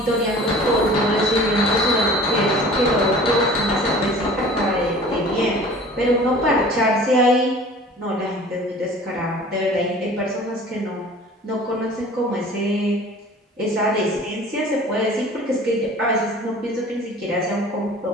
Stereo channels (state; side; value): normal; both; correlation 0.45